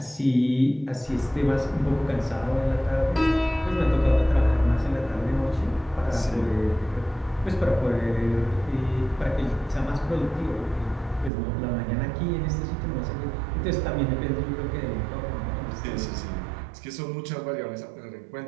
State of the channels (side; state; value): left; drops out; at 11.3 s